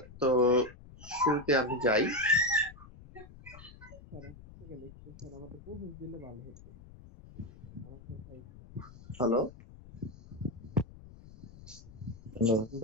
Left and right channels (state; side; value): noise; left; rumble, 19 dB below the sound